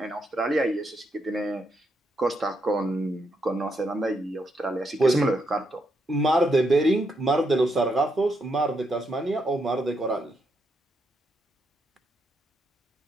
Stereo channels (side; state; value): both; normal; correlation 0.79